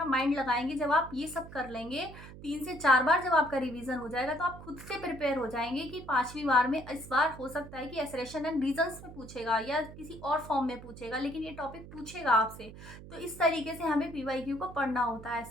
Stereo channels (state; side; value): noise; right; hum, 15 dB below the sound